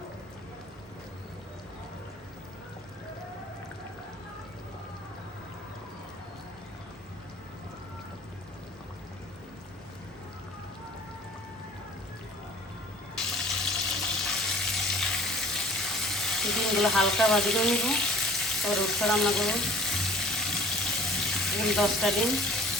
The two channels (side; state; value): both; normal; correlation 0.50